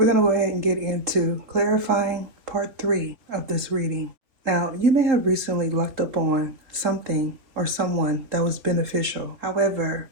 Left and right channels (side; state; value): left; late; 3.5 ms